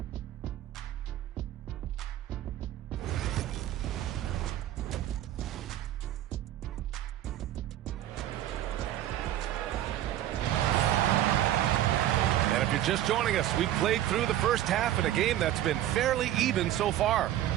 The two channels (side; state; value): left; quieter; 12.8 dB